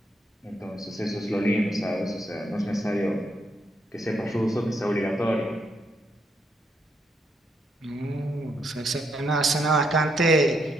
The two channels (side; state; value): both; normal; correlation 0.76